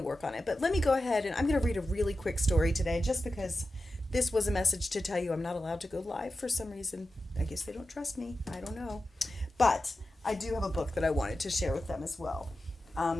on it. But let me go ahead and I'm going to read a really quick story today just because this was a message to tell you I'm not allowed to go live for some reason. I guess they don't trust me. I don't know. But I do have a book that I wanted to share with them as well.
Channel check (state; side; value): normal; both; correlation 0.92